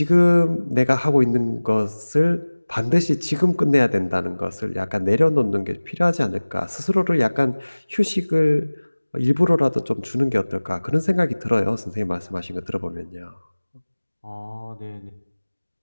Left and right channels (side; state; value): both; inverted; correlation -1.00